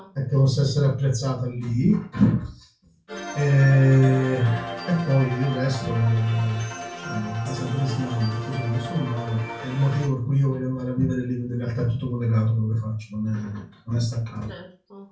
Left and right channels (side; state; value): both; identical; correlation 1.00